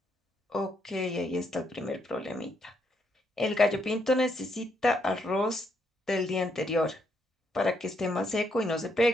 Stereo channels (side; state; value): both; normal; correlation 0.76